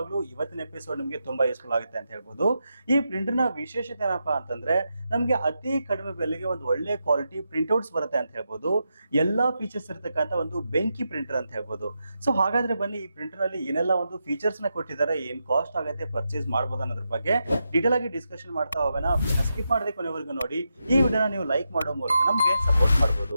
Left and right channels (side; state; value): both; inverted; correlation -0.86